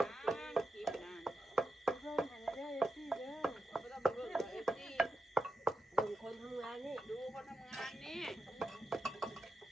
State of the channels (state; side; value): normal; both; correlation 0.89